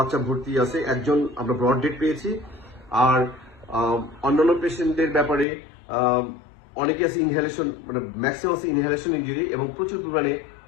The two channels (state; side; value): drops out; right; at 5.5 s